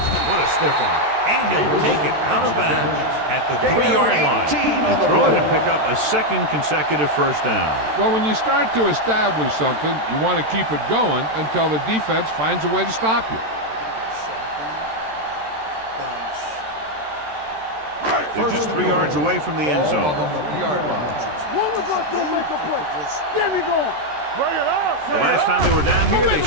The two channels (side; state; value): left; late; 13 ms